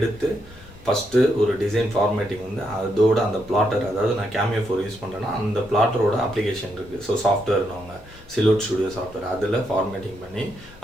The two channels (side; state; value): both; normal; correlation 0.79